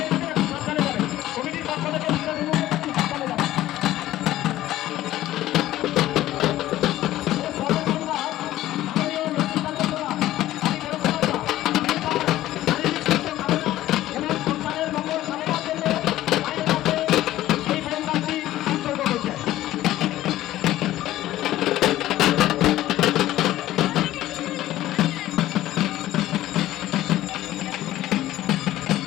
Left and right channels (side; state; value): right; quieter; 14.6 dB